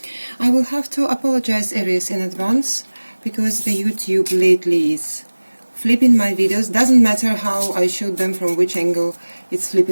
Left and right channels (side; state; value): both; inverted; correlation -1.00